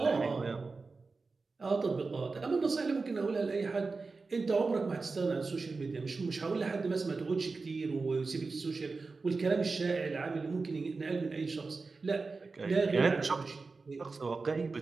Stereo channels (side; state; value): left; quieter; 4.1 dB